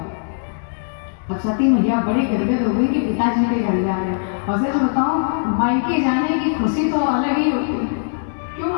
अब सती मैया बड़ी गदगद हो गई कि पिताजी के घर जा रहे हैं। और सच बताऊं मायके जाने की खुशी तो अलग ही होती है। क्यों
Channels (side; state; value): right; silent; digital silence